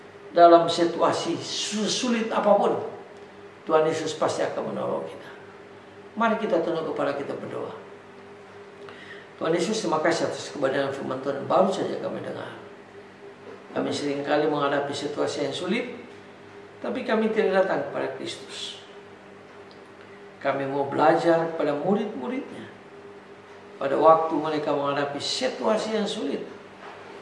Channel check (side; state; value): both; identical; correlation 1.00